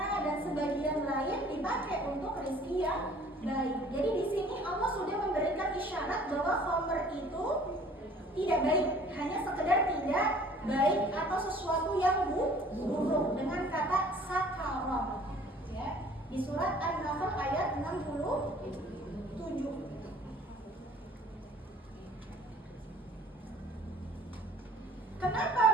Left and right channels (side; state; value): both; normal; correlation 0.52